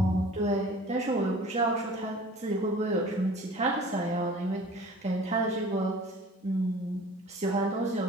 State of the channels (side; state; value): both; normal; correlation 0.45